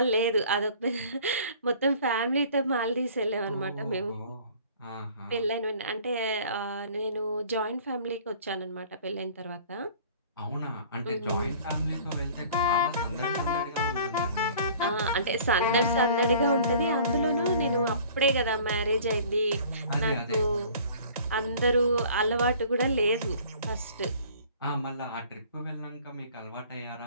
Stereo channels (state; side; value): inverted; both; correlation -0.50